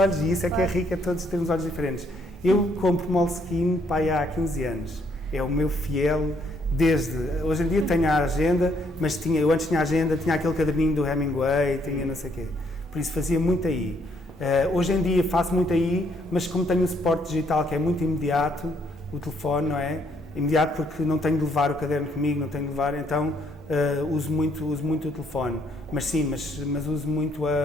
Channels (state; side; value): normal; both; correlation 0.69